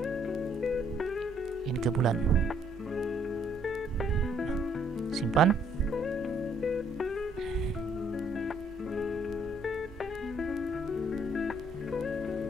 ini ke bulan, simpan.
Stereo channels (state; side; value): normal; both; correlation 0.66